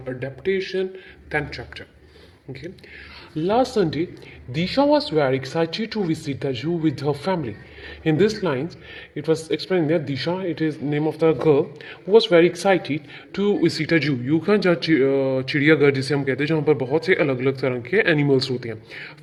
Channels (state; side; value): identical; both; correlation 1.00